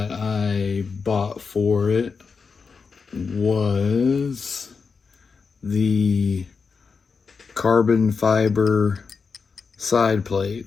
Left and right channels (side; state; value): right; quieter; 5.2 dB